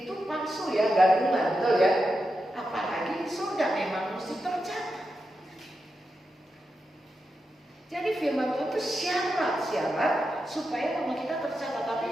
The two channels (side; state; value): both; normal; correlation 0.88